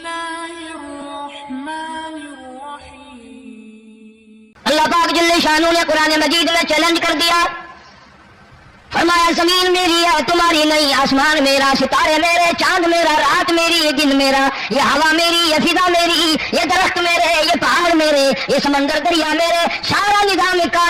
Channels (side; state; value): both; identical; correlation 1.00